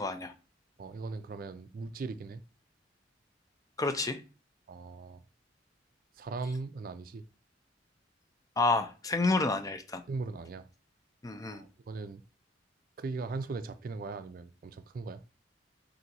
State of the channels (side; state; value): both; normal; correlation 0.51